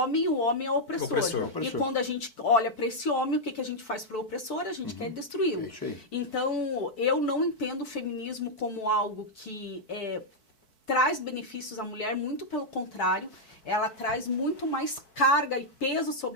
é o opressor. E quando a gente olha para esse homem, o que a gente faz para o opressor? A gente quer destruí-lo. Então, eu não entendo o feminismo como algo que traz benefícios à mulher, muito pelo contrário. Ela traz muito mais carga e peso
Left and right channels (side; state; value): right; late; 4.6 ms